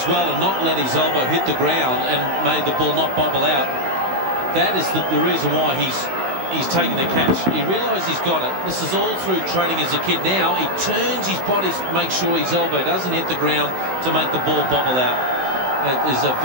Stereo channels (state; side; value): late; left; 16 ms